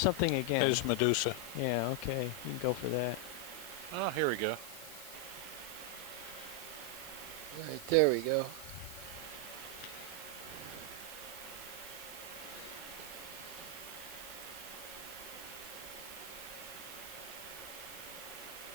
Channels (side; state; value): right; noise; hiss, 11 dB below the sound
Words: again. There's Medusa. Yeah, okay. You can go for that. Oh, here we go. Right, there we go.